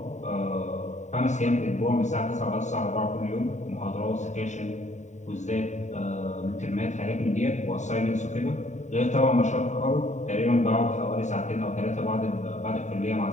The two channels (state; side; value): late; right; 0.34 ms